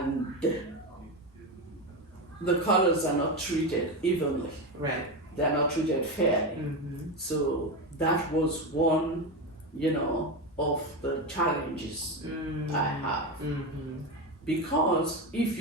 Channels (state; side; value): normal; both; correlation 0.16